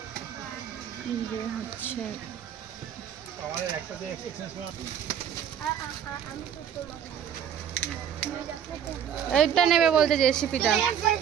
যে হচ্ছে এইটা নেবে বলতে, জেসিপিটা।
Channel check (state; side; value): quieter; left; 9.0 dB